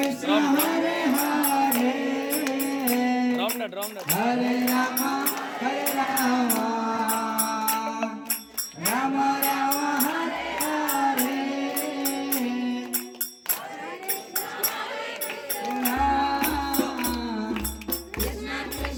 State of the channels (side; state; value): both; identical; correlation 1.00